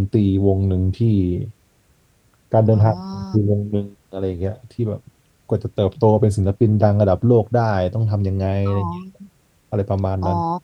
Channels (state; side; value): identical; both; correlation 1.00